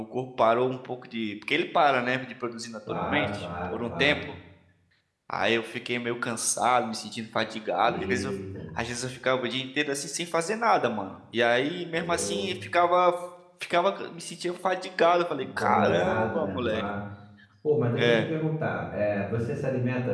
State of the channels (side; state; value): both; identical; correlation 1.00